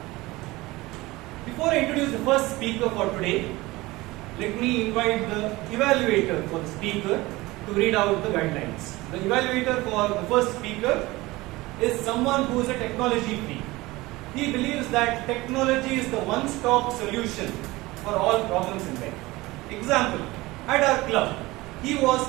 Before I introduce the first speaker for today, let me invite the evaluator for the speaker to read out the guidelines. The evaluator for the first speaker is someone who is a technology freak. He believes that technology is the one-stop solution for all problems in life. Example, at our club, he was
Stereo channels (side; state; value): left; quieter; 20.4 dB